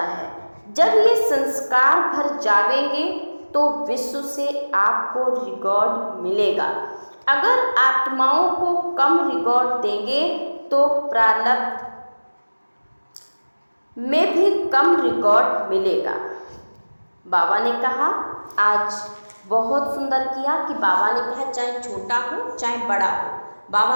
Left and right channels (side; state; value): both; inverted; correlation -1.00